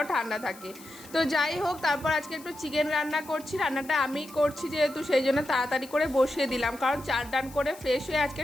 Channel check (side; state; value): left; noise; hiss, 20 dB below the sound